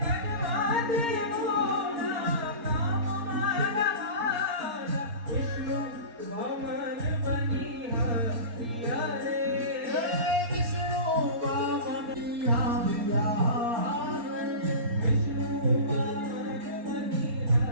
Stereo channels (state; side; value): late; left; 4.3 ms